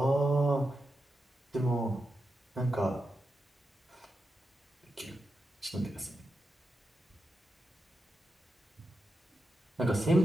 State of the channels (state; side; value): normal; both; correlation 0.88